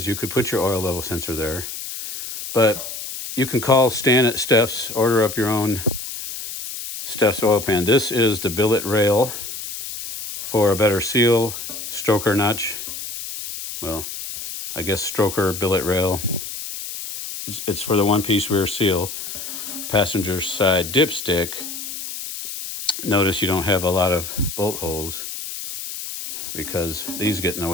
You could put your oil level sensor there. But you can call Stan at Stef's, order up your own Stef's oil pan. This is the billet rail for a better seal, stroker notch. Well, I guess stroker billet rail. It's for the one-piece rear seal. Passenger side dipstick. Notice you don't have a lot of bolt holes because these get in the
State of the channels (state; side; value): noise; left; hiss, 8 dB below the sound